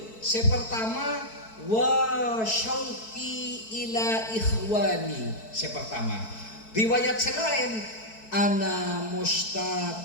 Sepertama wa syauqi ila ikhwani. Sepertama. Riwayat selain ana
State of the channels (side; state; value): right; late; 4.6 ms